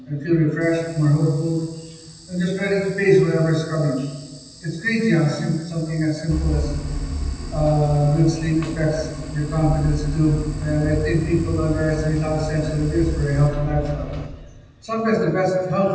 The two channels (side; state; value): both; identical; correlation 1.00